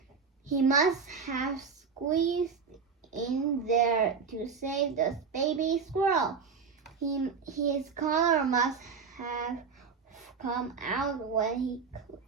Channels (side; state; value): left; quieter; 5.5 dB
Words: He must have squeezed in there to save the baby squirrel. His collar must have come out when he